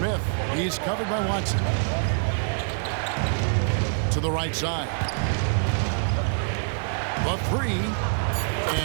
He's covered by Watson. To the right side. The three.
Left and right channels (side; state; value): left; silent; 61 dB below the other